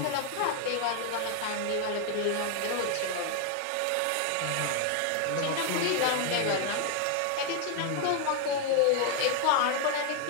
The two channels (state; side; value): different; both; correlation 0.00